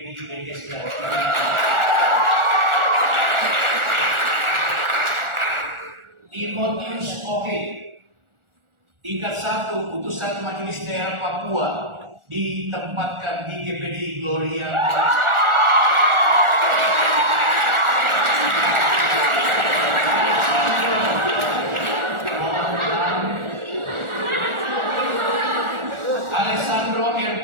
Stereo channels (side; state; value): left; late; 1.4 ms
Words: BSD. Timotius Oke, tingkat 1 putusan Majelis Daerah Papua ditempatkan di GPD Gloria. Alessandro